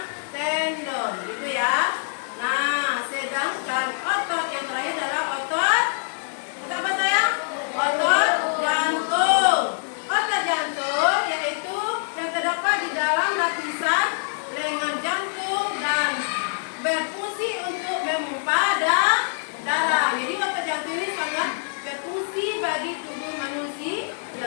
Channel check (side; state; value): right; silent; digital silence